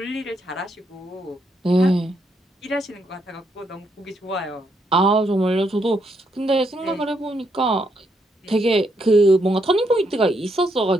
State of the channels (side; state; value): both; normal; correlation 0.76